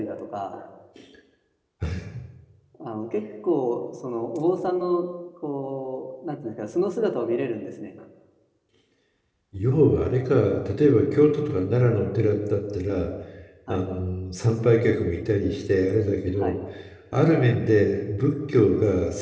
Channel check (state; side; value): identical; both; correlation 1.00